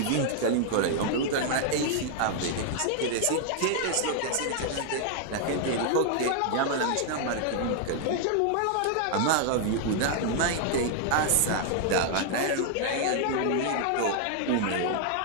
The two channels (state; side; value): different; both; correlation 0.00